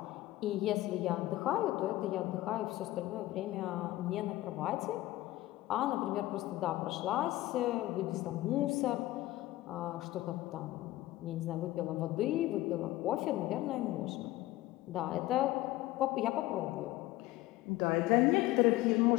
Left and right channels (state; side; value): quieter; right; 16.9 dB